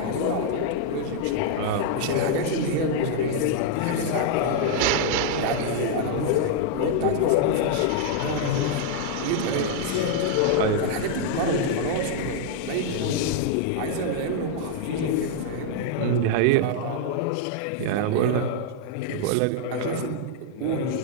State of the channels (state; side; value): different; both; correlation -0.01